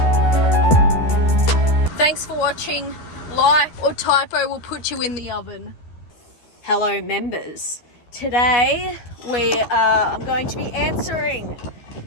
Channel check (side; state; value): right; late; 12 ms